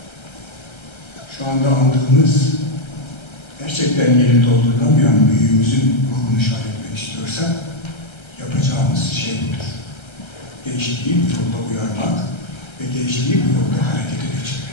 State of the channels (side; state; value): right; late; 1.3 ms